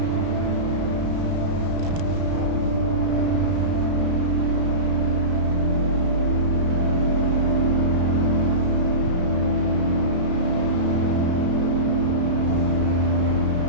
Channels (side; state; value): left; late; 33 ms